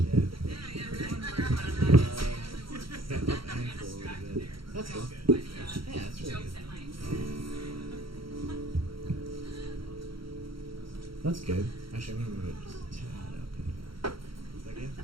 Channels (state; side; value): late; left; 0.74 ms